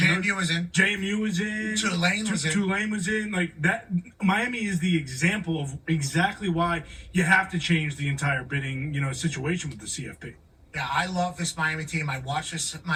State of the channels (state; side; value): identical; both; correlation 1.00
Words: was in. JMU was in. Tulane was in. Tulane was in. Like that, Miami is the example of exactly why you have to change the entire bidding, situation with the CFP. Yeah, I love this Miami team. I watch this